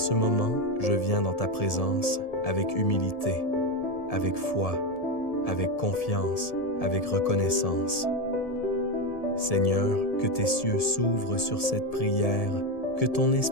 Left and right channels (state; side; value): late; right; 1.7 ms